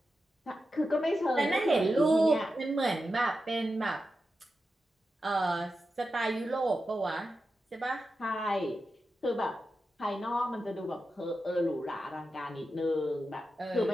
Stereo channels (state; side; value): normal; both; correlation 0.90